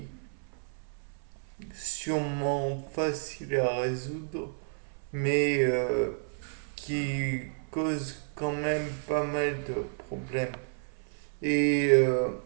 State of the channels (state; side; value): silent; left; 57 dB below the other